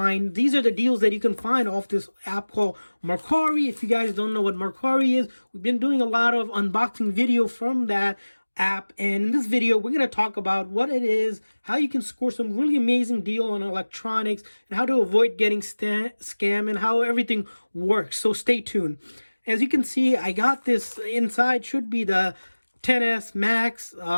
These are the deals that you can find off this app called Mercari. If you guys don't know what Mercari is, we've been doing a lot of unboxing video from that app, and in this video we're going to talk about what it is, how you can score some really amazing deal on electronics, and how to avoid getting scam, and how everything works. So stay tuned. As you can see, I got this inside, should be the XS Max,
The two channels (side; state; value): both; inverted; correlation -1.00